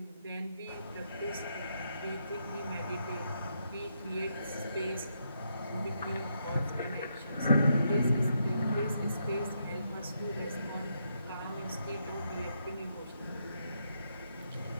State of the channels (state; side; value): inverted; both; correlation -0.79